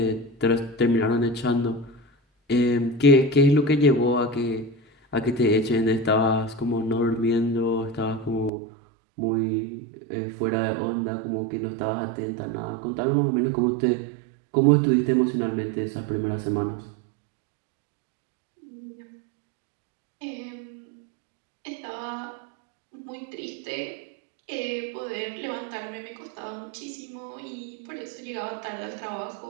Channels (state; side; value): drops out; left; at 8.5 s